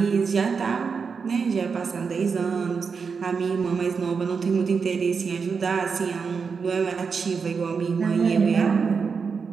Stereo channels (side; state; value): left; quieter; 5.5 dB